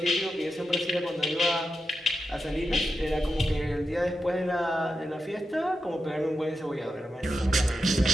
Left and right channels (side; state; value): both; normal; correlation 0.88